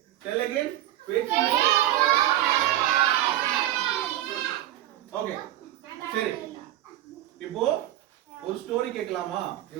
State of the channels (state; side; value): quieter; left; 13.9 dB